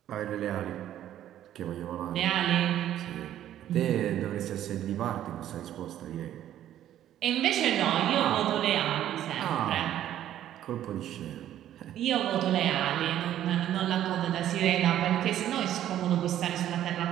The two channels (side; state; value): left; quieter; 11.8 dB